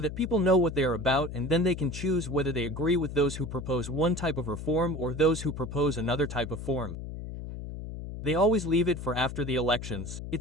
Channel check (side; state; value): left; noise; hum, 8 dB below the sound